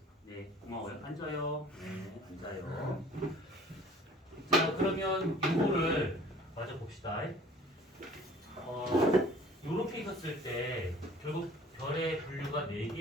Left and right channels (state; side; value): normal; both; correlation 0.50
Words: 네, 고마워요. 앉아요. 네, 앉아요. 자, 그러면 이거를 마저 봅시다. 요렇게 있었을 때 결국 별의 분류가